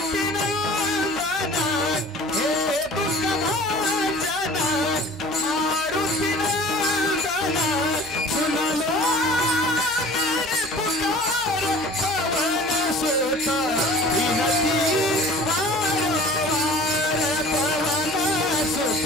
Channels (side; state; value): right; noise; hum, 23 dB below the sound